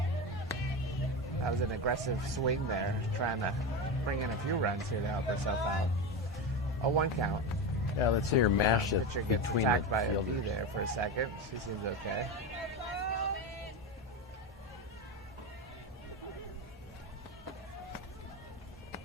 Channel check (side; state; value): both; normal; correlation 0.19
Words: That was an aggressive swing there, trying to bring in a few runs here to help herself out. A 1 count. Yeah, let's see her mash it Pitcher gets between attacked the by a fielders. bee there for a second. She seems okay.